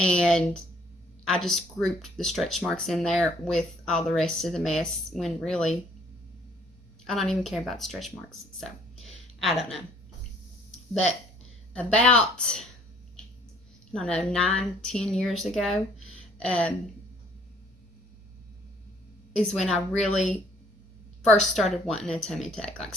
I just grouped the stretch marks in there with all the rest of the mess when really I don't even care about the stretch marks. So I don't know. But about, 9-10 years ago is when I really first started wanting a tummy tuck. Like,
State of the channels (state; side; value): normal; both; correlation 0.60